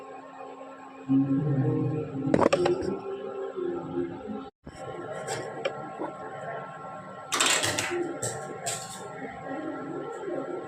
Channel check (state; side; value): identical; both; correlation 1.00